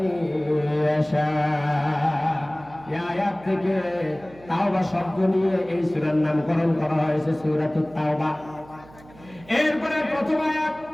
ইয়াশা। এই আয়াত থেকে তাওবা শব্দ নিয়ে এই সূরার নামকরণ করা হয়েছে সূরাতুত তাওবা। এরপরে প্রথম আয়াত,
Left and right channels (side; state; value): right; noise; hum, 22 dB below the sound